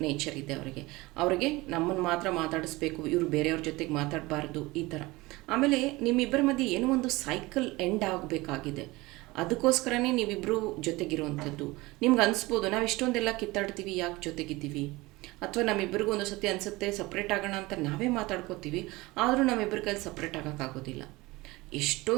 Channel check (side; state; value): left; quieter; 21.5 dB